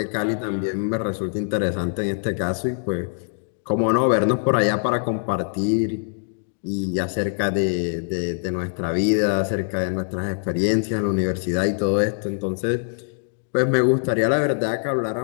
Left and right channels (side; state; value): right; silent; digital silence